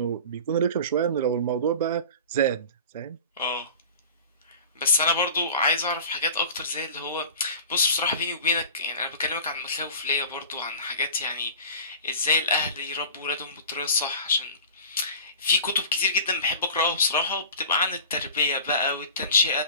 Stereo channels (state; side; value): inverted; both; correlation -0.38